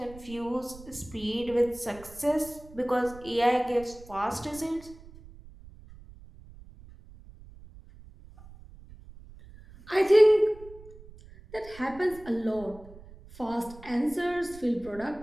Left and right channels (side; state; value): right; noise; rumble, 20 dB below the sound